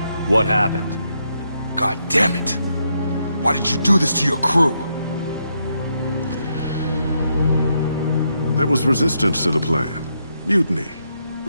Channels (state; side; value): inverted; both; correlation -0.79